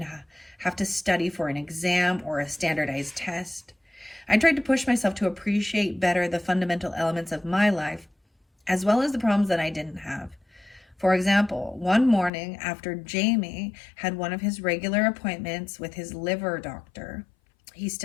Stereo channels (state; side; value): drops out; right; at 12.3 s